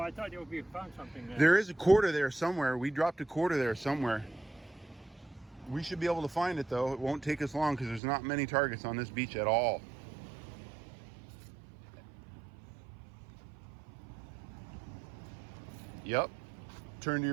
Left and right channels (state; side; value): drops out; left; at 8.0 s